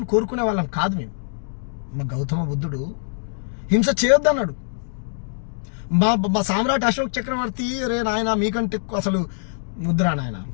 కోరుకునే వాళ్ళం కాదు మేము. మా గౌతమ బుద్ధుడు హింస చేయొద్దన్నాడు. మా సామ్రాట్ అశోక్ చక్రవర్తి రే నాయన మీకంటే అసలు ముద్రా నాయన,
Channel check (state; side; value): silent; right; digital silence